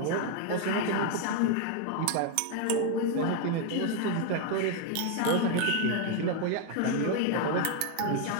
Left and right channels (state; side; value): different; both; correlation 0.01